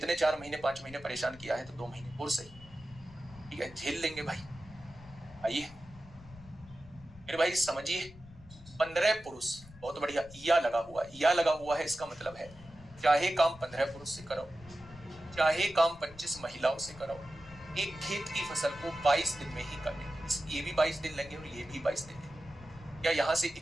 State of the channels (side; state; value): left; noise; rumble, 19 dB below the sound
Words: 4 महीने 5 महीने परेशान किया है तो 2 महीने और सही, ठीक है, झेल लेंगे भाई। आइए मेरे भाई समझिए, 15 पुरुष, बहुत बढ़िया, या लगा हुआ है। या लगा हुआ है इसका मतलब है चाहे काम 15 पुरुष से कराओ, चाहे काम 25 महिलाओं से कराओ, एक खेत की फसल को 22 दिन में ही करने, ये भी 22 दिन लेंगे और ये भी 22 दिन लेंगे। क्या यहाँ से